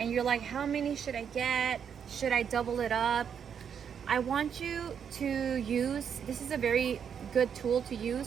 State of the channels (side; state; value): left; quieter; 7.7 dB